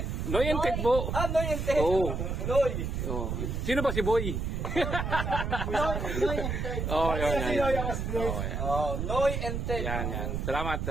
Noy and Ted po. Noy and Ted. Oo. Noy. Oh. Sino ba si Boy? Oh, yan. Noy and Ted. Yan. Salamat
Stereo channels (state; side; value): noise; right; rumble, 2 dB below the sound